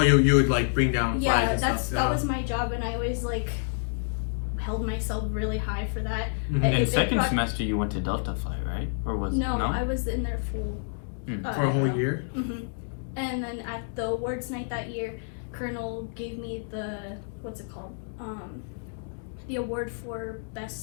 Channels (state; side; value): silent; right; digital silence